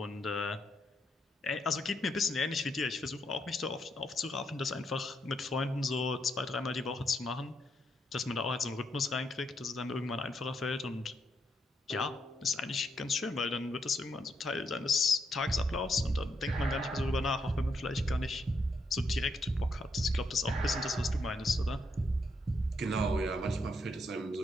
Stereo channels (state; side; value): normal; both; correlation 0.78